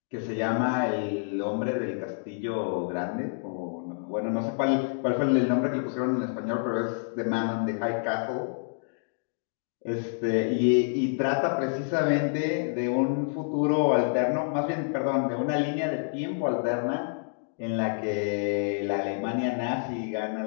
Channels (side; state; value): right; silent; digital silence